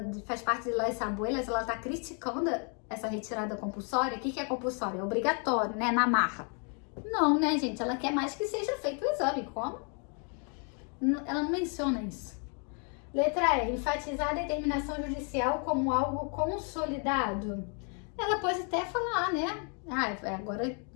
faz parte de Las Abuelas, ela tá criticando essa retirada compulsória. O que é compulsório? É obrigatório, né, na marra. Não, né, gente? Ela quer mais que seja feito o exame. Como? Ela não menciona isso. Letra E. Enfatizar a determinação judicial como algo consolidado. Ela pode até falar, né?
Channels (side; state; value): right; quieter; 39.6 dB